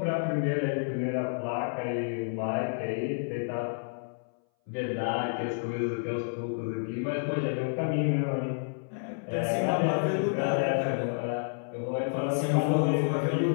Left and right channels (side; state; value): right; silent; 58 dB below the other